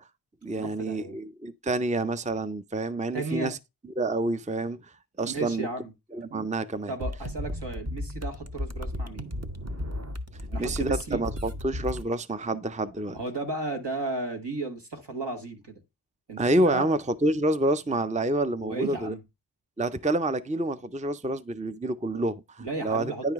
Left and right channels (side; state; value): both; normal; correlation 0.45